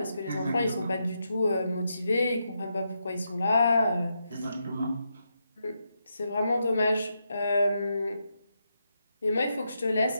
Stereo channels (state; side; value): inverted; both; correlation -0.83